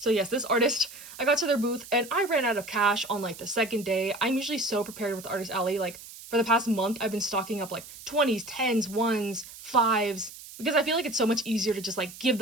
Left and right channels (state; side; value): noise; right; hiss, 16 dB below the sound